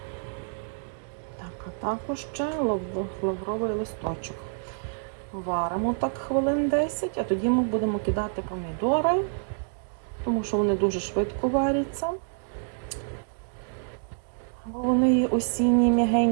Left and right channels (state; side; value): silent; left; digital silence